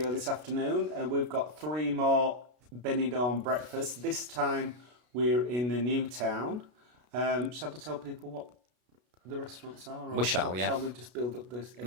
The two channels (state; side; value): late; left; 33 ms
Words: this afternoon, and we've got 3 more Benidorm breakfasts. This time we're in the new town. Shall we tell people what the restaurants are? We shall, yeah. Shall we just build up this